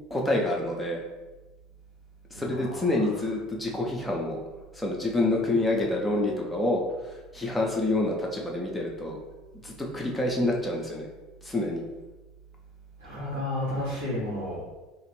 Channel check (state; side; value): normal; both; correlation 0.56